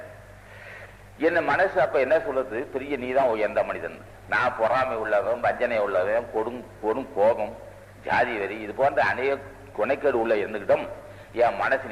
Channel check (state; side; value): identical; both; correlation 1.00